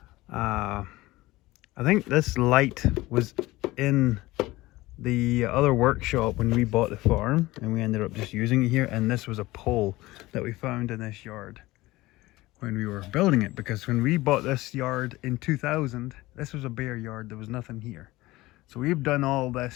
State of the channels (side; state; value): right; quieter; 19.0 dB